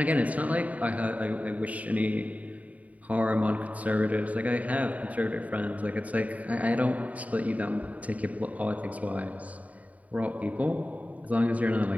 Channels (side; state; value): left; late; 0.070 ms